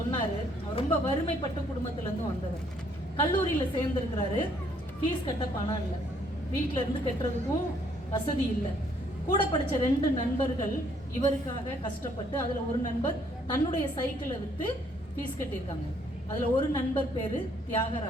அவர் ரொம்ப வறுமைப்பட்ட குடும்பத்திலேருந்து வந்தவர். கல்லூரியில் சேர்ந்துருக்கிறாரு, ஃபீஸ் கட்ட பணம் இல்லை, வீட்டில் இருந்து கட்டுறதுக்கும் வசதி இல்லை. கூட படித்த 2 நண்பர்கள் இவருக்காக கஷ்டப்பட்டு, அதில் ஒரு நண்பர் தன்னுடைய சைக்கிளை விற்று ஃபீஸ் கட்டியிருக்காங்க. அதில் ஒரு நண்பர் பேர்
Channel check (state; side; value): normal; both; correlation 0.66